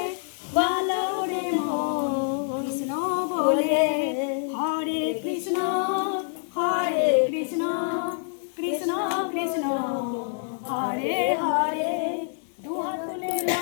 বলো রে মন কৃষ্ণ বলে হরে কৃষ্ণ কৃষ্ণ কৃষ্ণ হরে হরে দুহাত তুলে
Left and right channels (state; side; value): silent; right; digital silence